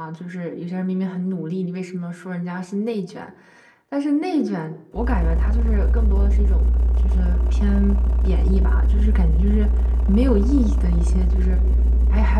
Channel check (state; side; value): identical; both; correlation 1.00